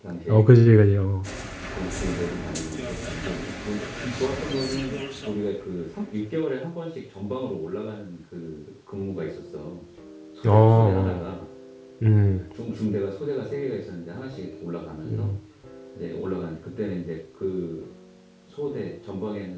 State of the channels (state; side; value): identical; both; correlation 1.00